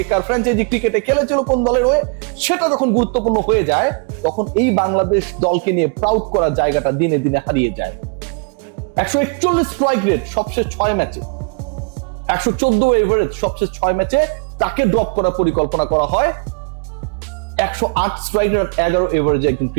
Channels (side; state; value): left; quieter; 37.4 dB